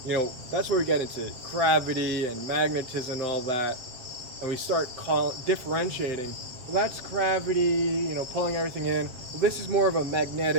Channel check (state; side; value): late; left; 7.8 ms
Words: that's where we get into gravity and magnetism and all that, and we start differentiating. Well, that's gravity, pulling everything in. Well, this is more of a